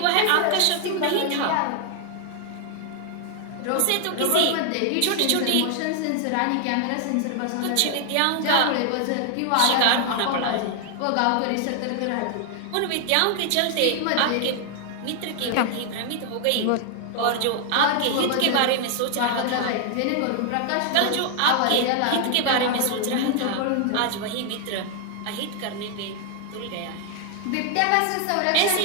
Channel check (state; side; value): different; both; correlation 0.00